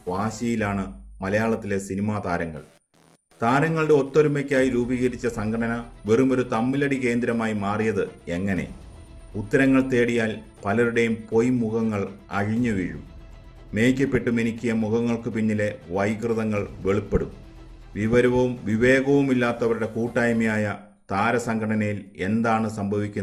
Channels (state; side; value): identical; both; correlation 1.00